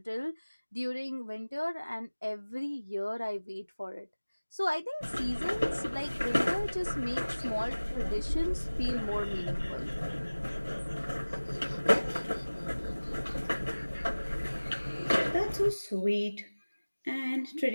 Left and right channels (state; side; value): inverted; both; correlation -1.00